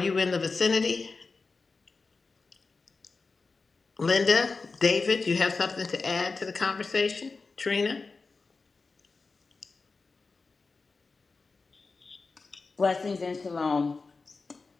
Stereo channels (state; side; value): quieter; right; 4.1 dB